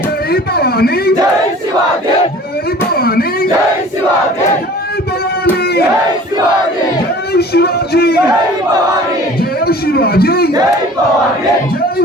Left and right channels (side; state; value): both; normal; correlation 0.46